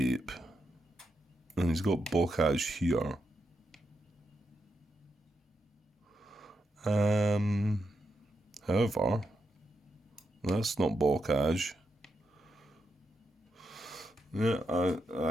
And he's got blockage here. However, that's not blockage. Yeah,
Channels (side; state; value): both; normal; correlation 0.84